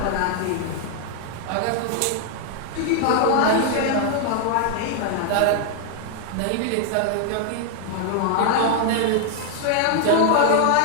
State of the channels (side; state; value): both; different; correlation 0.00